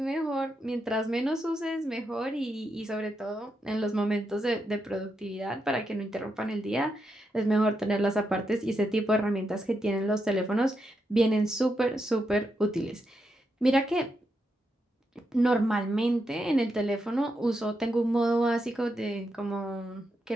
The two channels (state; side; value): normal; both; correlation 0.83